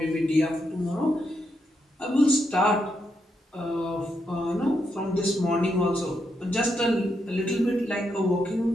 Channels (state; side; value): normal; both; correlation 0.81